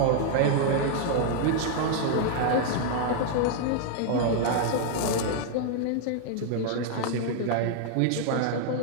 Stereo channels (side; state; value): both; different; correlation 0.00